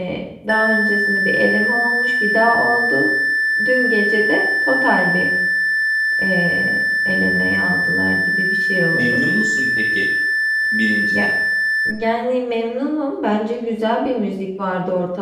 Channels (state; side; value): identical; both; correlation 1.00